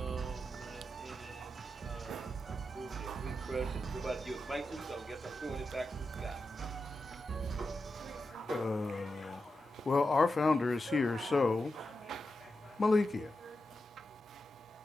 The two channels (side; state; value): both; normal; correlation 0.89